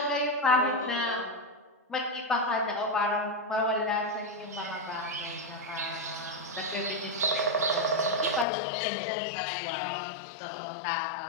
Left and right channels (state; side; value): drops out; right; at 8.5 s